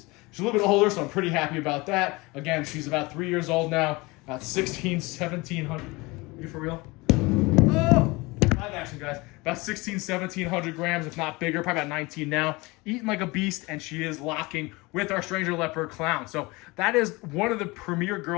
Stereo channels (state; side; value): quieter; right; 23.9 dB